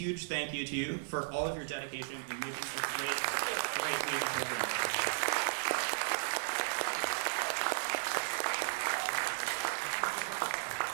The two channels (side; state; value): left; silent; digital silence